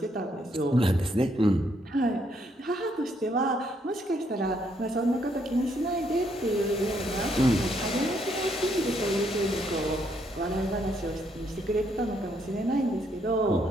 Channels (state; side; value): normal; both; correlation 0.73